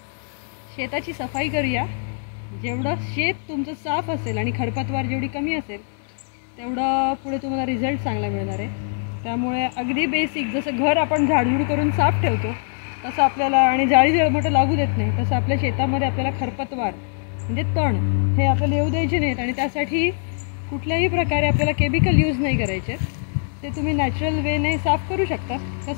शेताची सफाई करूया. जेवढं शेत तुमचं साफ असेल आणि खरपतवार जेवढी कमी असेल तेवढं पुढे तुम्हाला रिझल्ट चांगला मिळणार आहे. त्यामुळे अगदी बेसिक जसं घर आपण झाडझूड करून साफ ठेवतो तसं आपल्याला, आणि जाळी मोठं लागू देत नाही, तसं आपल्या शेतामध्ये आपल्याला खरपतवार म्हणजे तण हे आपल्याला येऊ द्यायचे नाहीत. आणि त्यासाठी कुठल्याही प्रकारे आपल्याला केमिकल यूज नाही करायचे. ते तुम्ही नॅचरल वेने साफ करू शकता.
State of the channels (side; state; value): right; silent; 61 dB below the other